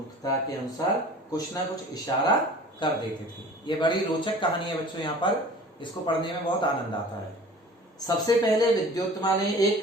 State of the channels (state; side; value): normal; both; correlation 0.43